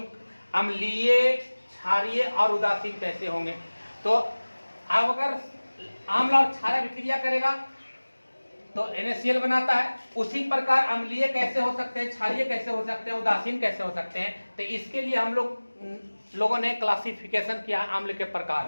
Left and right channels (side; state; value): both; inverted; correlation -1.00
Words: अम्लीय, क्षारीय और उदासीन कैसे होंगे? तो अब अगर आम्ल और क्षार अभिक्रिया करेगा तो NaCl बनाता है। उसी प्रकार अम्लीय कैसे हो सकते हैं, क्षारीय कैसे हो सकते हैं, उदासीन कैसे हो सकते हैं? तो इसके लिए हम लोगों ने क्लासिफिकेशन किया आम्ल के प्रकार